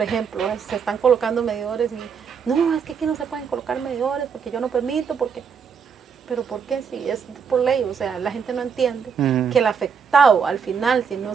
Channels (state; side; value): quieter; left; 6.5 dB